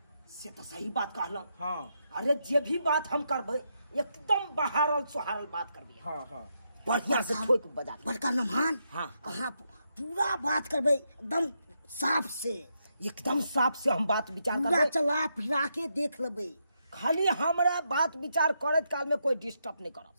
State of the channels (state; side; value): inverted; both; correlation -0.81